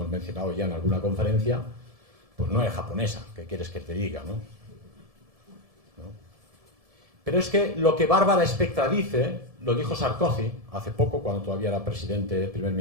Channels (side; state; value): left; late; 1.7 ms